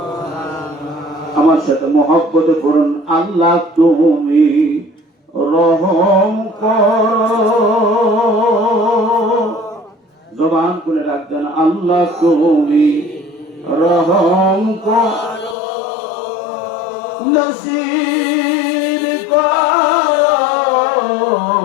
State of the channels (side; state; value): right; drops out; at 15.6 s